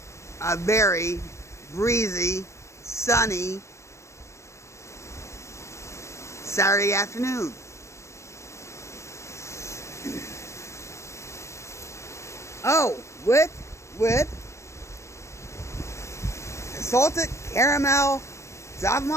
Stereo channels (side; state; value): right; late; 0.14 ms